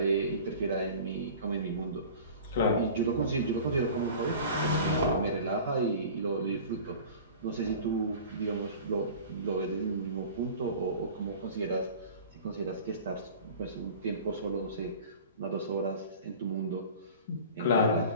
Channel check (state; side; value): inverted; both; correlation -0.40